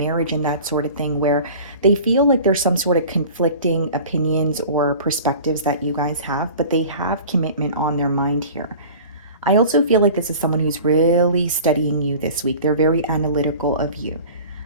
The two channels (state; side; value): inverted; both; correlation -0.41